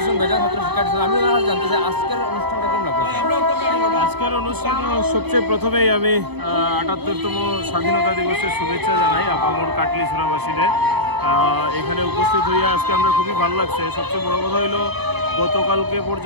বেজান ছাত্র শিক্ষা দিচ্ছেন। আমি জানতে চাই আজকের অনুষ্ঠানটা কেমন লাগবে? আজকের অনুষ্ঠান সবচেয়ে প্রথমেই আমি ৭৮তম স্বাধীনতা দিবসের শুভেচ্ছা জানাই আপামর কাটলিছড়াবাসীদের। এখানে উপস্থিত হইয়া আজকে আমরা খুবই ভালো লাগছে। সবচেয়ে বড় কথা হইলো গতকালকে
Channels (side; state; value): left; late; 0.98 ms